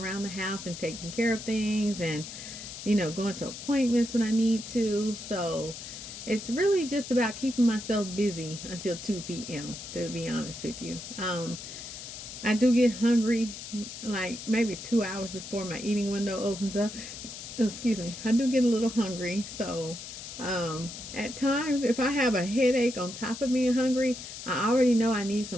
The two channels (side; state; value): left; noise; hiss, 11 dB below the sound